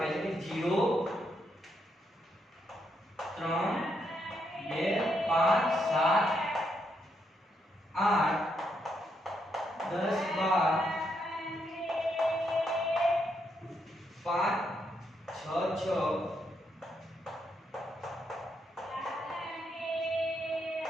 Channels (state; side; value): normal; both; correlation 0.78